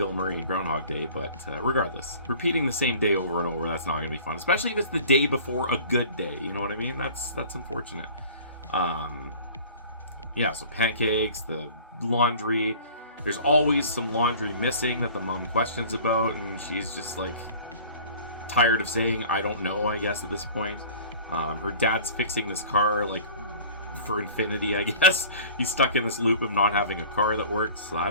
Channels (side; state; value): both; inverted; correlation -0.45